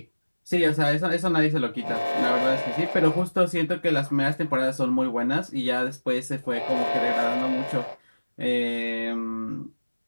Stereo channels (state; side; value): inverted; both; correlation -1.00